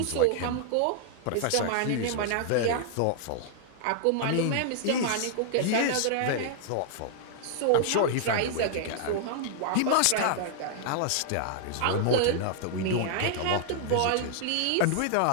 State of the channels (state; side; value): different; both; correlation -0.01